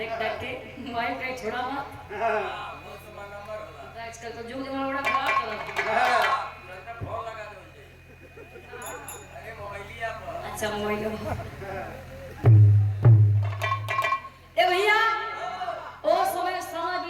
के मोबाइल कहीं छोड़ा मत। आजकल तो जुग जमाना बड़ा खराब चला। अच्छा मोबाइल ए भैया ओ समय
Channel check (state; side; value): identical; both; correlation 1.00